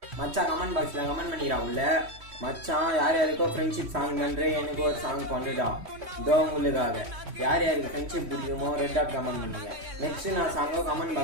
மச்சான் கமெண்ட் பாக்ஸில் கமெண்ட் பண்ணிக்கிறா உள்ள. மச்சான் யார் யாருக்கோ ஃப்ரெண்ட்ஷிப் சாங் பண்ணுறேன், எனக்கு ஒரு சாங் பண்ணுடா இதோ உங்களுக்காக. யார் யாருக்கு ஃப்ரெண்ட்ஷிப் பிடிக்குமோ ரெட் டாட் கமெண்ட் பண்ணுங்க. நெக்ஸ்ட்டு நான் சாங்கோ கமெண்ட்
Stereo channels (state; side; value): late; left; 3.1 ms